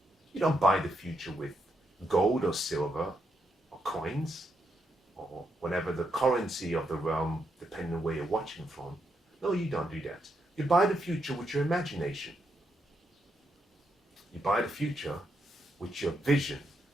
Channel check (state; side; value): normal; both; correlation 0.80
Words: You don't buy the future with gold or silver or coins or whatever the currency of the realm, depending on where you're watching from. No, you don't do that. You buy the future with your imagination. You buy the future with your vision.